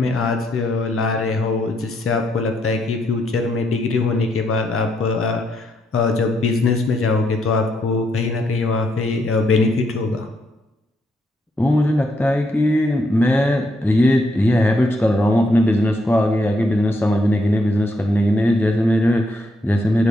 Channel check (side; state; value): both; normal; correlation 0.76